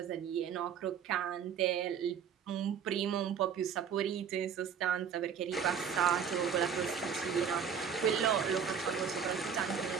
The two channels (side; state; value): left; quieter; 7.5 dB